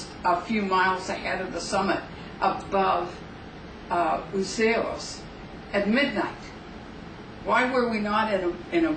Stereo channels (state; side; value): identical; both; correlation 1.00